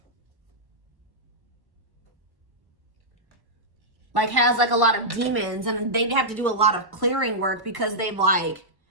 like has like a lot of demons, and they have to do a lot of clearing work because they've like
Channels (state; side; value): late; left; 1.1 ms